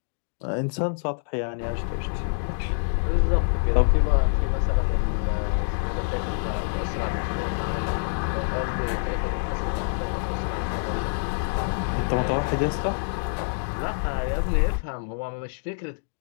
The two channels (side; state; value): right; silent; digital silence